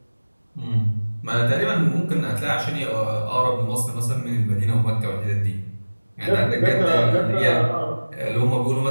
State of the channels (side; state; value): both; inverted; correlation -1.00